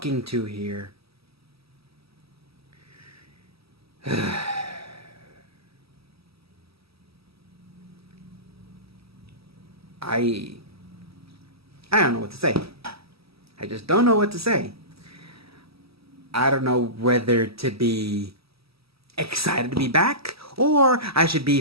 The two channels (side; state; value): left; late; 0.76 ms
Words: 2 here. I don't know what to say. I just don't know what to say. I don't know whether to be excited to be back or I should be